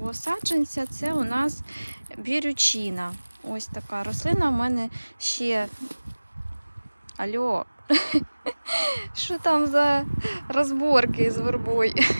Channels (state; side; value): inverted; both; correlation -1.00